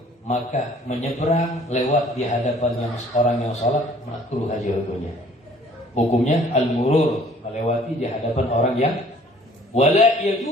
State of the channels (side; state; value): both; normal; correlation 0.55